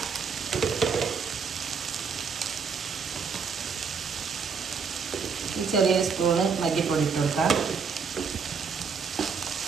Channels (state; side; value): quieter; left; 5.7 dB